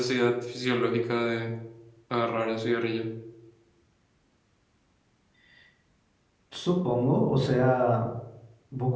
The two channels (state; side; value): identical; both; correlation 1.00